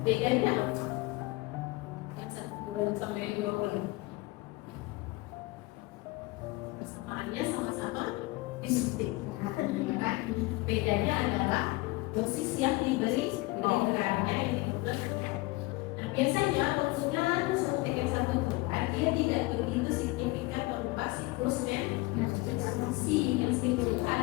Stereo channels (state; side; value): quieter; right; 21.8 dB